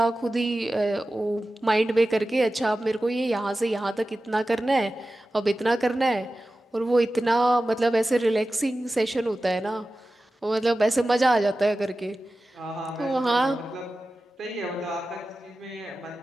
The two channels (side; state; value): both; normal; correlation 0.95